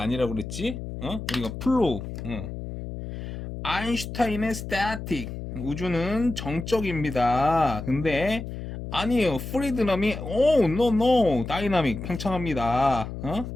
그랬지? 우리가 플로우. 아인슈타인의 스태틱. 우주는 정적입니다. 근데 아니에요. 프리드럼이 노 다이나믹 팽창합니다.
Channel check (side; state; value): left; noise; hum, 8 dB below the sound